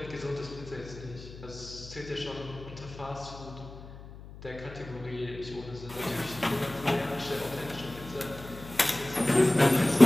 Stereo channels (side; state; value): left; noise; hum, 15 dB below the sound